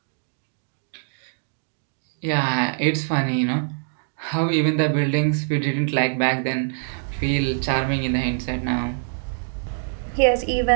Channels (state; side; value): silent; left; digital silence